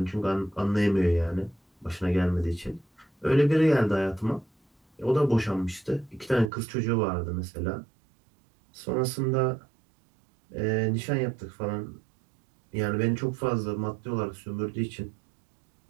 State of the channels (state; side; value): drops out; left; at 6.5 s